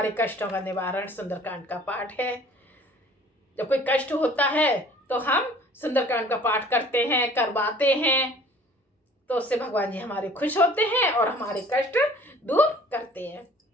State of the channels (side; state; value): both; normal; correlation 0.51